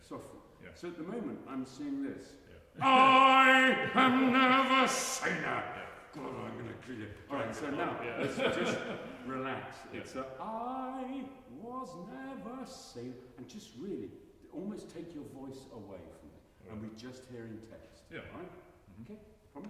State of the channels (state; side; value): identical; both; correlation 1.00